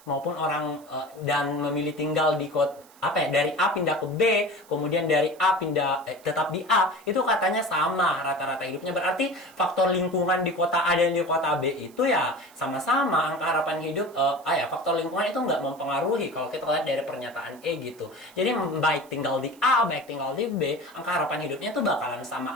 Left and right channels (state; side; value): noise; right; hiss, 26 dB below the sound